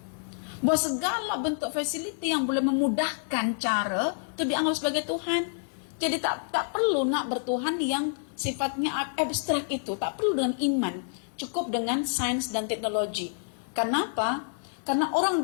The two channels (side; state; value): right; silent; digital silence